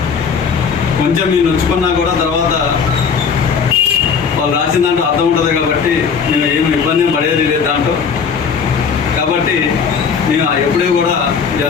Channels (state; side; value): quieter; right; 6.2 dB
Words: కొంచెం మీరు నొచ్చుకున్నా కూడా తర్వాత వాళ్ళు రాసిన దాంట్లో అర్థం ఉంటుంది కాబట్టి మేము ఏమి ఇబ్బంది పడేది లేదు దాంట్లో. కాబట్టి మేము ఎప్పుడూ కూడా